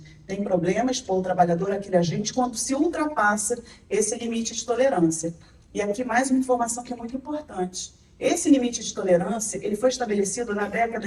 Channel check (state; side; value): identical; both; correlation 1.00